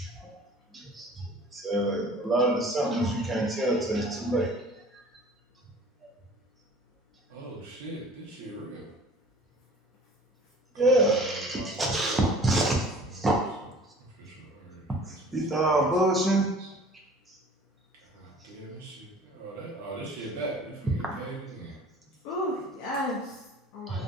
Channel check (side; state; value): both; normal; correlation 0.47